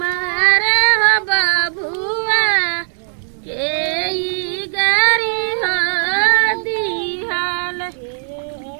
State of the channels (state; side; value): silent; left; digital silence